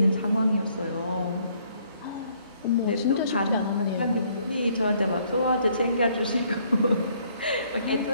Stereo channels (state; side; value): inverted; both; correlation -0.66